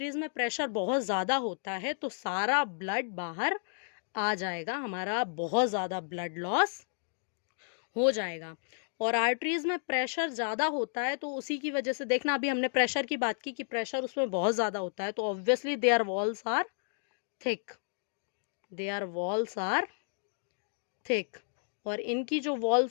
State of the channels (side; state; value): right; silent; digital silence